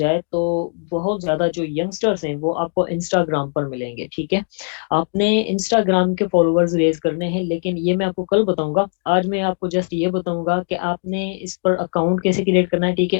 तो बहुत ज्यादा जो यंगस्टर्स हैं वो आपको इंस्टाग्राम पर मिलेंगे, ठीक है। आपने इंस्टाग्राम के फॉलोअर्स रेज करने हैं, लेकिन ये मैं आपको कल बताऊंगा। आज मैं आपको जस्ट ये बताऊंगा कि आपने इस पर अकाउंट कैसे क्रिएट करना है, ठीक है।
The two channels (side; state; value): right; silent; digital silence